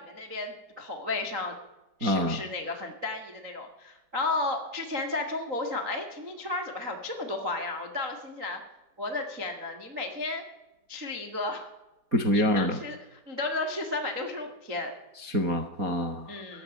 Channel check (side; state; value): left; late; 4.2 ms